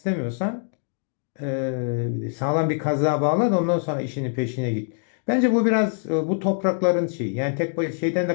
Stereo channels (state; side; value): silent; right; digital silence